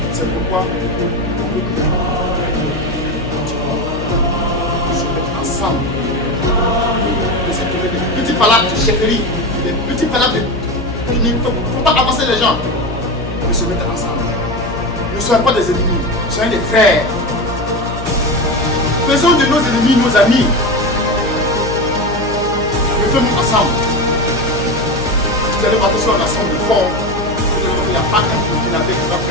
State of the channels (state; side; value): noise; left; hum, 9 dB below the sound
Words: C'est pourquoi on veut se mettre ensemble. Laisser tomber des petits palabres de chefferie, des petits palabres il ne faut pas avancer les gens. Mais se mettre ensemble. Ne soyons pas des ennemis, soyons des frères. Faisons de nos ennemis nos amis. Mettons-nous ensemble. Vous allez voir que si on ensemble fort, il n'y a pas un Burkinabé qui va